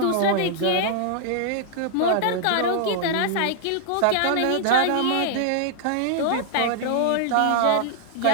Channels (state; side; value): different; both; correlation -0.01